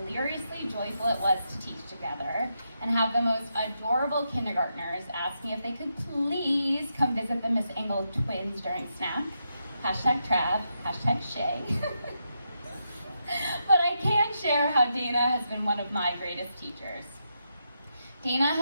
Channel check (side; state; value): both; inverted; correlation -0.83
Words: joyful it was to teach together and have the most adorable kindergartners ask me if they could please come visit the Miss Engel twins during snack. Hashtag Trav, hashtag Shay. But I can share how Dana has been one of my greatest teachers. Dana